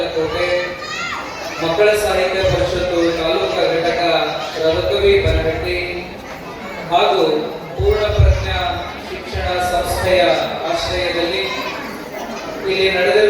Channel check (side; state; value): both; identical; correlation 1.00